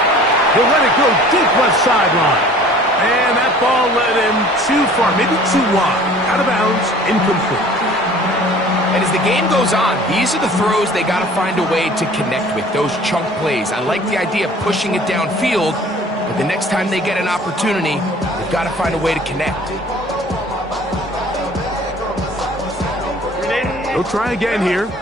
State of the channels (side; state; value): both; normal; correlation 0.49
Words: He'll let it go deep left sideline. And that ball led him too far, maybe too wide. Out of bounds, incomplete. And as the game goes on, these are the throws they got to find a way to connect with, those chunk plays. I like the idea of pushing it downfield, but the next time they get an opportunity, they've got to find a way to connect. They'll try again here.